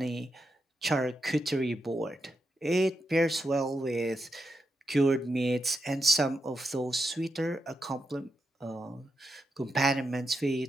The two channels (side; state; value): both; normal; correlation 0.85